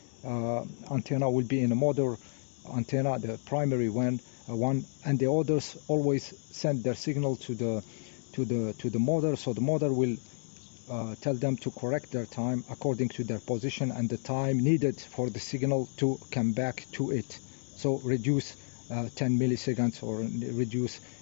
antenna will be in a mother antenna, the primary one, and the others always send their signal to the mother. So the mother will tell them to correct their time according to their position and the time needed for the signal to come back to it. So reduce 10 milliseconds or reduce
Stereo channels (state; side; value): silent; right; 57 dB below the other